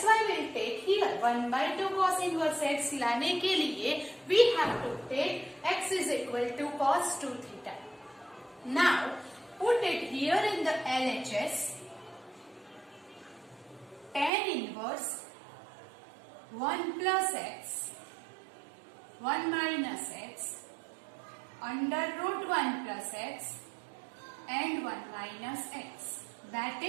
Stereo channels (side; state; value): left; drops out; at 14.3 s